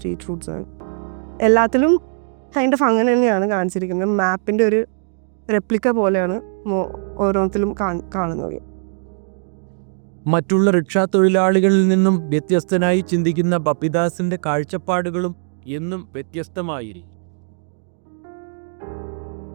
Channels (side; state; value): left; silent; 66 dB below the other